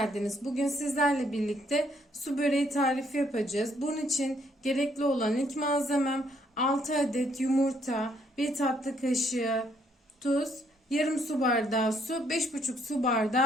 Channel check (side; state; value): both; normal; correlation 0.69